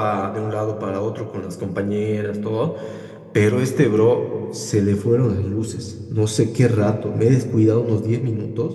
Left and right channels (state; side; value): identical; both; correlation 1.00